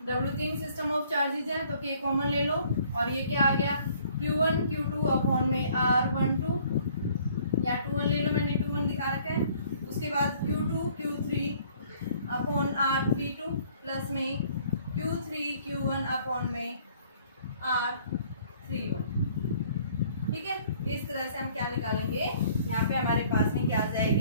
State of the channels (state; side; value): inverted; both; correlation -0.58